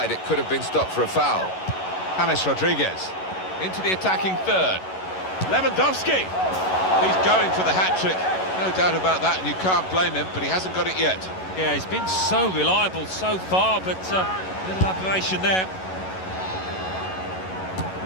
It could have been stopped for a foul. James Rodriguez into the attacking third. Lewandowski. He's going for the hat-trick, no doubt about that, and you can't blame him, but he hasn't got it yet. Yeah, he's been so reliable so far, but a little aberration there.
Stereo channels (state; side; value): late; right; 11 ms